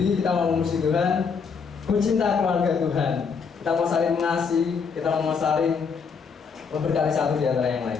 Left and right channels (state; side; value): quieter; right; 5.7 dB